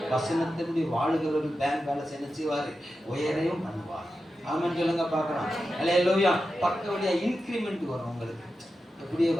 வசனத்தினுடைய வாழுகிறவர்கள் பேங்க் பேலன்ஸ் என்ன செய்வாரு? உயரையும் பண்ணுவார். ஆமென் சொல்லுங்க பார்க்கலாம். அல்லேலூயா. பக்க வழியா இன்கிரிமெண்ட் வரும் உங்களுக்கு. எப்படியே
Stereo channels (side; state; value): both; normal; correlation 0.91